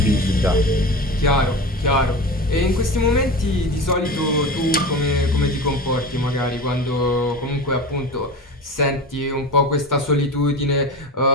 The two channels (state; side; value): normal; both; correlation 0.30